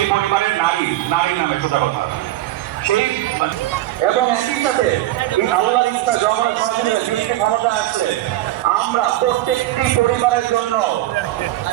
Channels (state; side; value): quieter; left; 15.4 dB